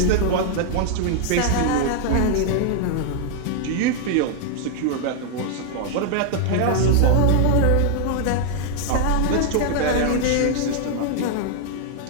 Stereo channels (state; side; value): different; both; correlation 0.00